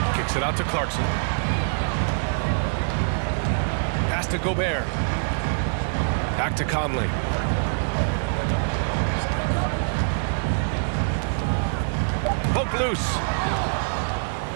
Kicks it out to Clarkson. Pass to Gobert. Back to Conley. Poke loose.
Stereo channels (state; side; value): silent; left; digital silence